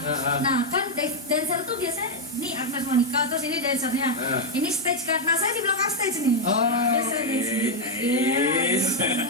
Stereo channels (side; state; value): both; normal; correlation 0.01